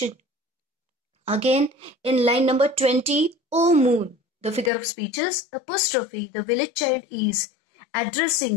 Again, in line number 20, O moon, the figure of speech is apostrophe. The village child is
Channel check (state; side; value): drops out; right; at 4.7 s